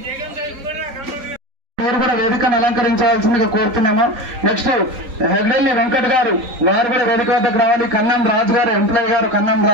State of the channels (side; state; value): left; late; 3.9 ms